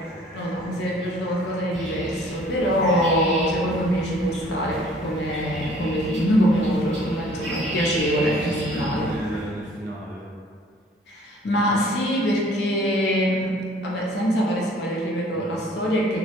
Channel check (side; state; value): both; normal; correlation 0.55